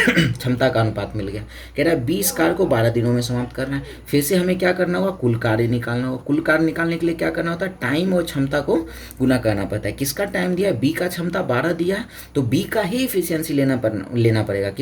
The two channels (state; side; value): identical; both; correlation 1.00